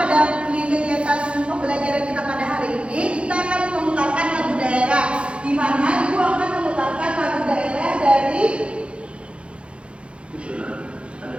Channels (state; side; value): late; left; 0.058 ms